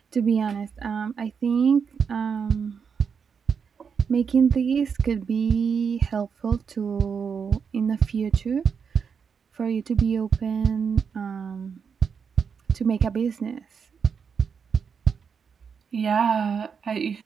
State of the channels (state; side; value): quieter; left; 6.3 dB